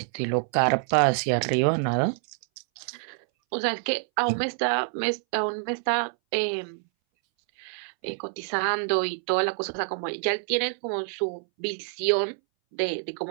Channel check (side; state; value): left; silent; 60 dB below the other